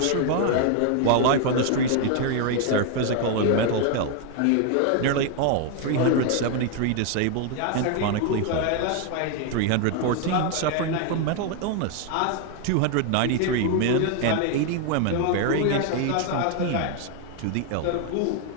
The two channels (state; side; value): different; both; correlation 0.00